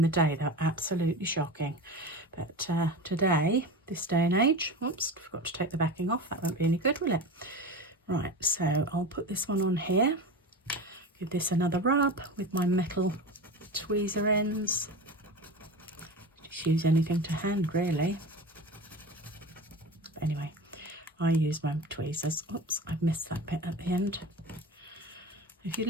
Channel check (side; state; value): both; normal; correlation 0.29